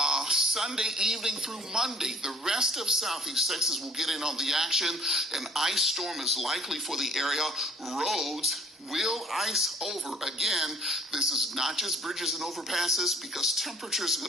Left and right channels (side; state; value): both; normal; correlation 0.52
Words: Sunday evening through Monday, the rest of southeast Texas will get in on the action. An ice storm is likely for the area. Roads will ice over. Again, this is not just bridges and overpasses, because temperatures are